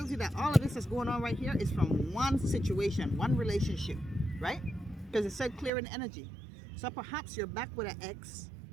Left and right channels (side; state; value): left; drops out; at 5.7 s